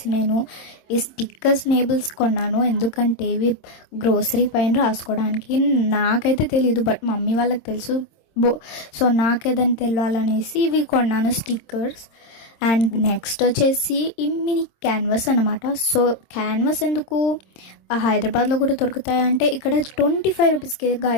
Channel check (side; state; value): right; late; 26 ms